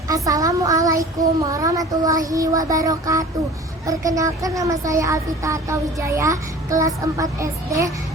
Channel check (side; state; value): both; normal; correlation 0.43